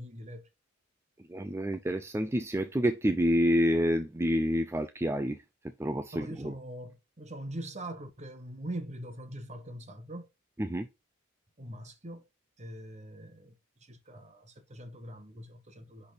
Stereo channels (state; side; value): normal; both; correlation 0.83